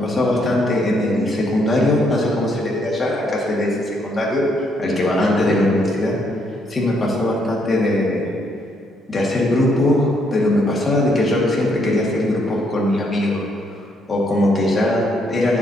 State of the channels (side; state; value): both; normal; correlation 0.72